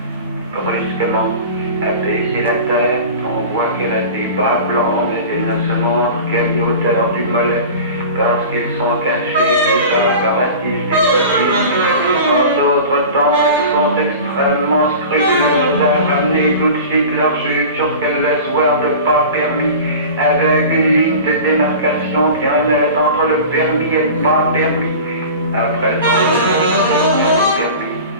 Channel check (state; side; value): inverted; both; correlation -0.36